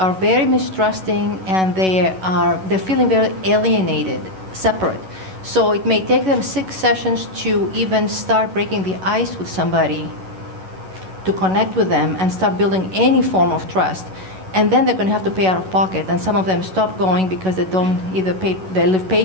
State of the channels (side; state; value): left; late; 11 ms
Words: very mistrusting, and they're feeling very alienated, separate. So it may take them 6 sessions to even start breaking the ice with somebody, to connect with them and start building any form of trust. And then they're going to have to pay out of pocket, and some of them stop going because they don't either they live